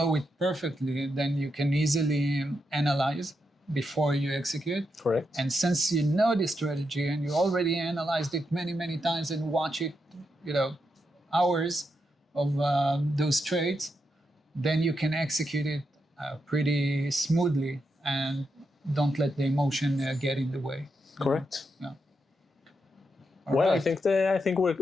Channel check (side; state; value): both; normal; correlation 0.84